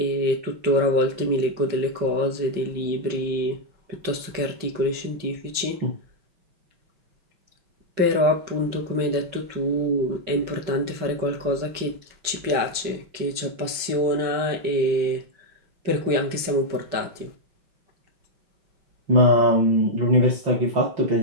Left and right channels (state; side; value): late; left; 5.3 ms